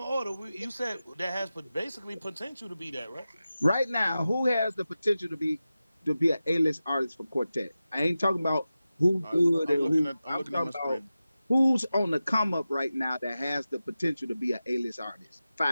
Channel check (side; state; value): both; inverted; correlation -0.94